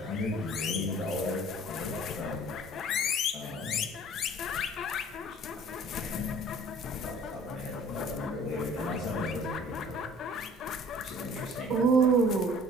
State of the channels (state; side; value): normal; both; correlation 0.51